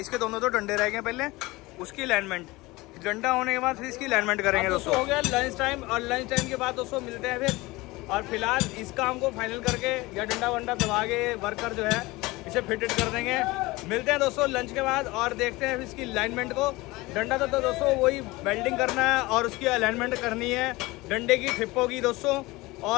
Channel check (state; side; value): quieter; right; 21.3 dB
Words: दोनों तो डंडे रह गए पहले, उसकी अलाइनमेंट, डंडा होने के बाद फिर इसकी अलाइनमेंट करेंगे दोस्तों। हो गया लंच टाइम, और लंच टाइम के बाद दोस्तों मिलते हैं फिर। और फिलहाल इस काम को फाइनल करके या डंडा वंडा दबा के वर्कर जो है इसे फिटेड कर देंगे। मिलते हैं दोस्तों लंच के बाद और देखते हैं इसकी अलाइनमेंट को। डंडा तो दोस्तों वही वेल्डिंग करना है और उसकी अलाइनमेंट करनी है, डंडे की ठिप्पों की दोस्तों,